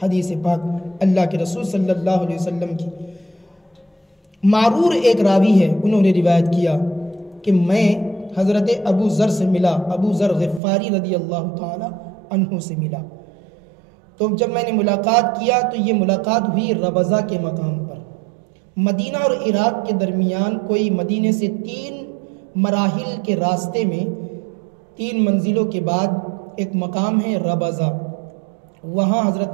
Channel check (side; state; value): left; drops out; at 10.6 s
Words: حدیث پاک اللہ کے رسول صلی اللہ علیہ وسلم کی. معرور ایک راوی ہے، انہوں نے روایت کیا کہ میں حضرت ابو ذر سے ملا، ابو ذر غفاری رضی اللہ تعالی عنہ سے ملا، تو جب میں نے ملاقات کیا تو یہ ملاقات ہوئی ربضہ کے مقام پر۔ مدینہ اور عراق کے درمیان کوئی مدینے سے 3 مراحل کے راستے میں 3 منزلوں کے بعد ایک مقام ہے ربضہ، وہاں